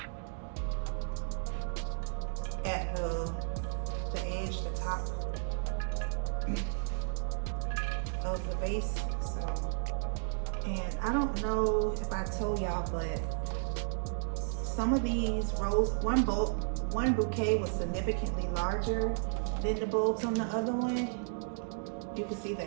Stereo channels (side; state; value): left; silent; digital silence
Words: at the edge, the top of the vase. So, and I don't know if I told y'all, but some of these rose, one bouquet was significantly larger than the bulbs on the other one. You can see